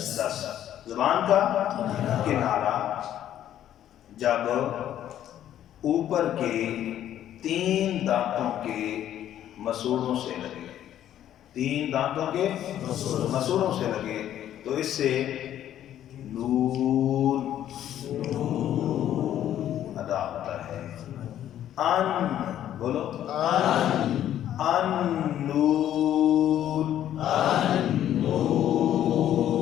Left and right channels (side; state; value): right; quieter; 11.4 dB